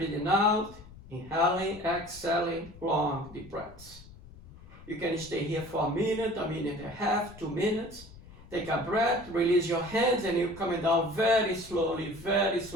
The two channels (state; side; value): noise; left; rumble, 19 dB below the sound